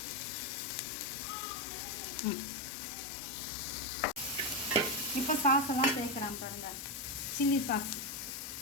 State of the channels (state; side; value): normal; both; correlation 0.09